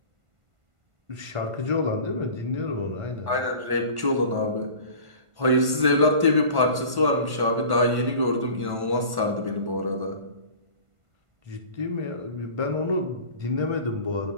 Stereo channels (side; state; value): left; late; 1.5 ms